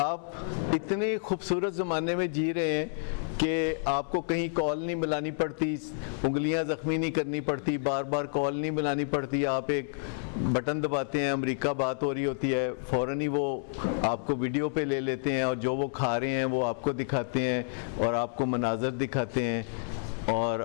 इतने खूबसूरत ज़माने में जी रहे हैं कि आपको कहीं कॉल नहीं मिलानी पड़ती, उंगलियां ज़ख्मी नहीं करनी पड़ती, बार बार कॉल नहीं मिलानी पड़ती। आप एक बटन दबाते हैं, अमेरिका बात हो रही होती है, फ़ौरन ही वो आपको वीडियो पे ले लेते हैं और जो वो खा रहे हैं वो आपको दिखाते हैं और आपको मनाज़र दिखाते हैं और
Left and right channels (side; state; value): right; silent; 58 dB below the other